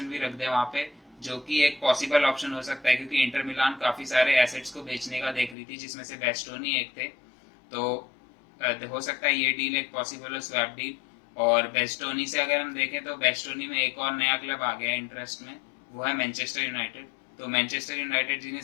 भी रख दे वहाँ पे, जो कि एक पॉसिबल ऑप्शन हो सकता है, क्योंकि इंटर मिलान काफी सारे एसेट्स को बेचने का देख रही थी, जिसमें से बेस्टोनी एक थे। तो हो सकता है ये डील एक पॉसिबल हो, स्वैप डील। और बेस्टोनी से अगर हम देखें तो बेस्टोनी में एक और नया क्लब आ गया इंटरेस्ट में, वो है मैनचेस्टर यूनाइटेड। तो मैनचेस्टर यूनाइटेड जिन्हें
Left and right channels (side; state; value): right; drops out; at 5.6 s